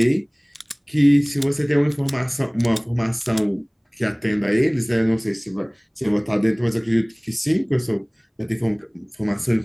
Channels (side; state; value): both; identical; correlation 1.00